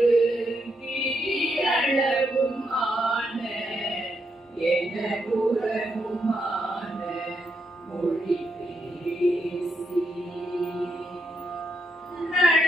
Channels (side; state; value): both; normal; correlation 0.80